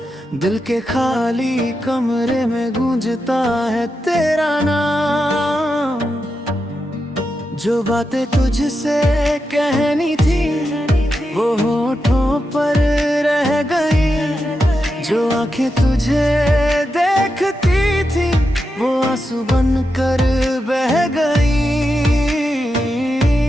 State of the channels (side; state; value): both; normal; correlation 0.87